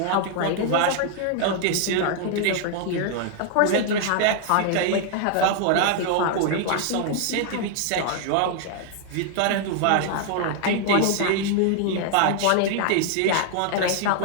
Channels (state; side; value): different; both; correlation 0.00